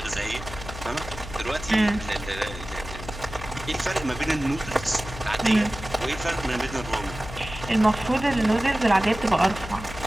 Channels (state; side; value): noise; left; hum, 12 dB below the sound